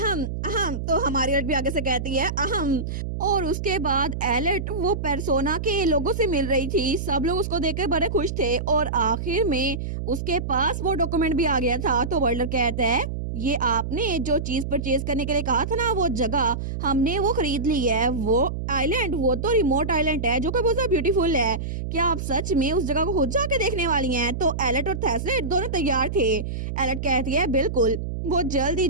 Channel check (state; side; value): noise; right; hum, 4 dB below the sound